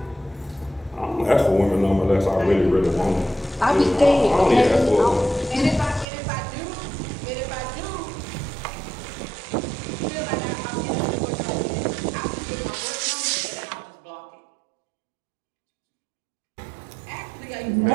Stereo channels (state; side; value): drops out; left; at 6.1 s